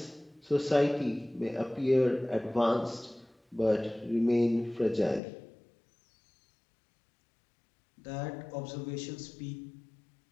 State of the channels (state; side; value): drops out; right; at 5.2 s